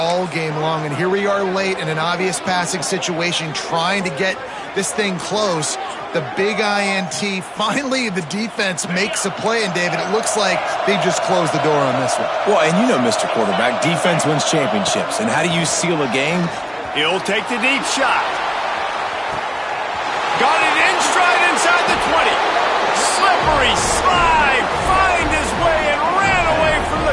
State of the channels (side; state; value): both; identical; correlation 1.00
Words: game long, and here we are late in an obvious passing situation trying to get this thing close. The big INT, finally the defense makes a play, and David, it looks like they just closed the door on this one. Well, and you know, Mr. Quarterback, defense wins championships. And how do you seal a game? He'll take the deep shot. Got it in stride inside the 20. Slippery slide, find his way and ran away from